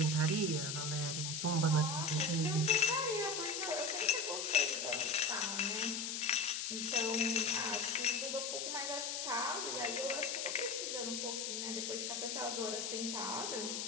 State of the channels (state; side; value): noise; left; hiss, 2 dB below the sound